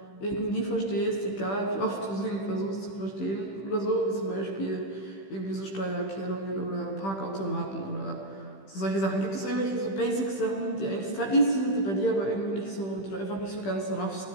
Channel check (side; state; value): right; late; 15 ms